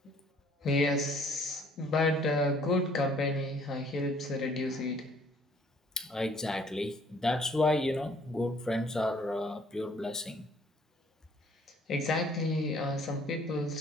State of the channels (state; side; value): normal; both; correlation 0.59